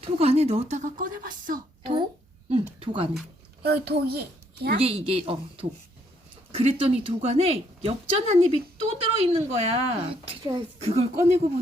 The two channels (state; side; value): normal; both; correlation 0.70